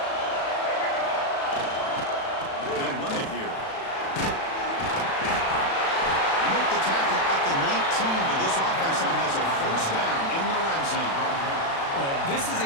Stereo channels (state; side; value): late; right; 36 ms